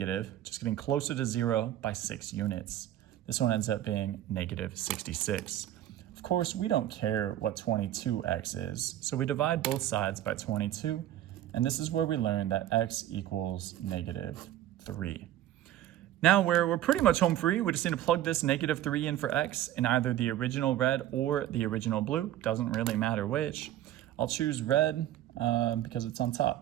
just getting closer to 0 by 6 units. This one ends up being negative 66. Of course, we don't care what 22x is, so we divide both sides by 22, and this is where we learn that x equals negative 3. Now we're pretty much home free. We just need to plug this negative 3 in for x in either the original red or the original blue. Doesn't really matter which. I'll choose red because it's on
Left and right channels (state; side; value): quieter; left; 12.9 dB